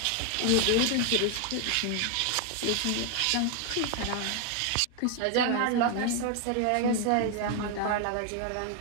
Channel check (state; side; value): different; both; correlation 0.01